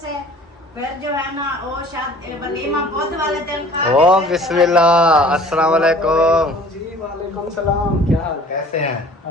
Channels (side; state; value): both; normal; correlation 0.49